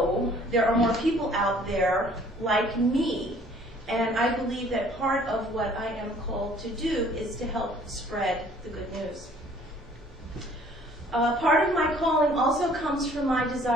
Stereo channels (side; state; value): both; normal; correlation 0.56